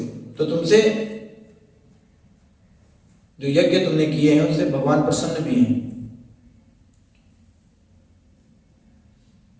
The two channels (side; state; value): both; identical; correlation 1.00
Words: तो तुमसे जो यज्ञ तुमने किए हैं उससे भगवान प्रसन्न भी हैं।